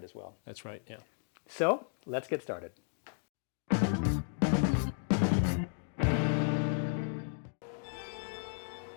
as well. That's right, yeah. So, let's get started.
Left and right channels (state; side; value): silent; right; digital silence